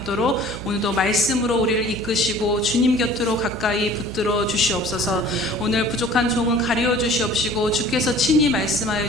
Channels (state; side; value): noise; right; hum, 11 dB below the sound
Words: 오늘도 말씀으로 우리를 이끄시고 주님 곁으로 가까이 붙들어 주시옵소서. 오늘 부족한 종은 가리워 주시옵시고 주께서 친히 말씀하여